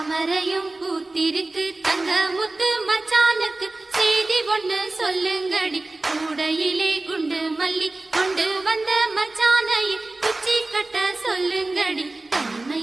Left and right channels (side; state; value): left; quieter; 3.0 dB